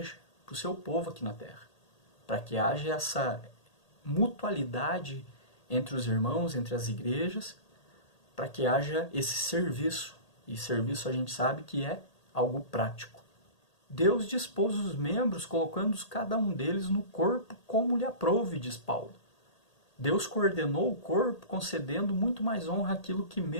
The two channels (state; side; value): late; right; 1.8 ms